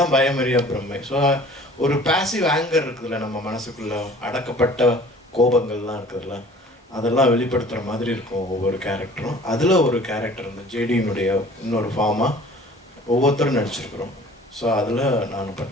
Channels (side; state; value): both; normal; correlation 0.48